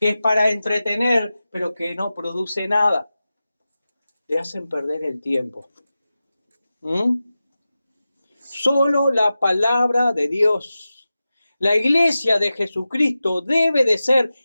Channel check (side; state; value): both; inverted; correlation -0.94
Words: es para entretener, pero que no produce nada. Te hacen perder el tiempo. Solo la palabra de Dios. La iglesia de Jesucristo debe de ser